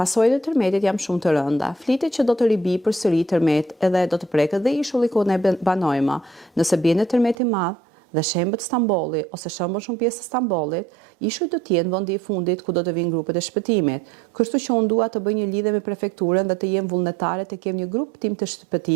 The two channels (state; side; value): drops out; left; at 7.4 s